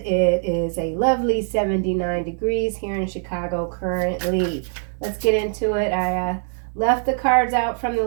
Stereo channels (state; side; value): silent; left; 64 dB below the other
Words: is a lovely 79 degrees here in Chicago currently. Let's get into it. I left the cards out from the